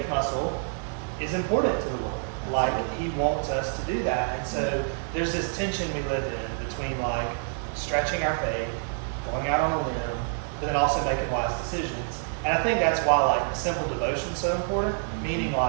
muscle is important to the Lord. Like, He wants us to do that. And so there's this tension we live in between like stretching our faith, going out on a limb, but then also making wise decisions. And I think that's why like a simple devotion is so important. Meaning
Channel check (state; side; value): silent; left; 60 dB below the other